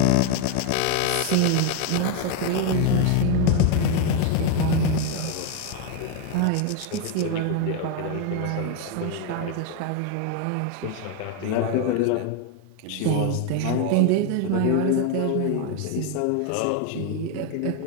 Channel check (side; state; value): both; different; correlation 0.01